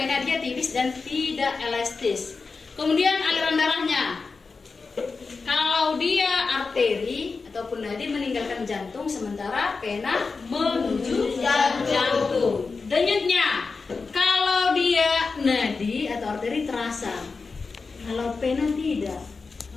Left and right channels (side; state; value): right; quieter; 4.4 dB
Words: dia tipis dan tidak elastis. Kemudian aliran darahnya, kalau dia arteri ataupun nadi meninggalkan jantung, sementara pena menuju jantung. Denyutnya, kalau dia nadi atau arteri terasa, kalau pena tidak.